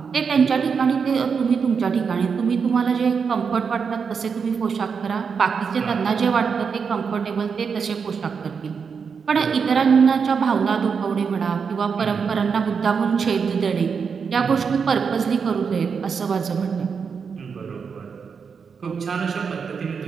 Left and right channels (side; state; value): left; quieter; 6.0 dB